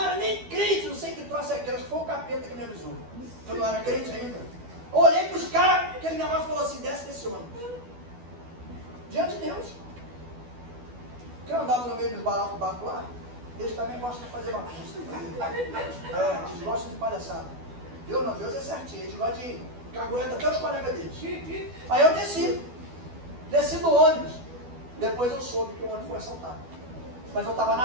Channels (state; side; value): late; left; 12 ms